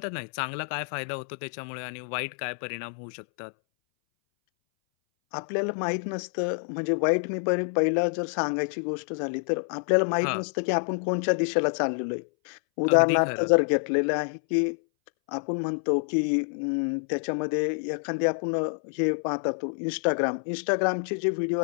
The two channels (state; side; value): silent; right; 60 dB below the other